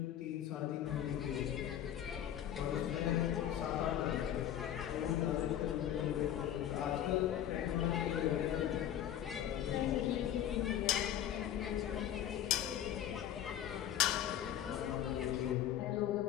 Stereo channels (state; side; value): quieter; right; 10.9 dB